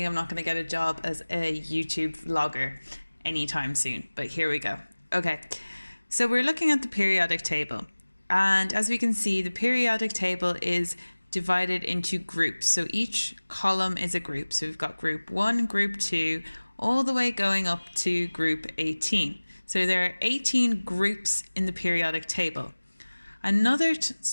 I'm not going to get a job as a YouTube vlogger anytime soon, but here we go. Okay, so we're looking at the periodic table. And as we can see, the periodic table is divided into groups. So each column is a group. So we've got group 1, group 2, all the way going up to group 18. So there are 18 groups in the periodic table.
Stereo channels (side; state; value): both; inverted; correlation -1.00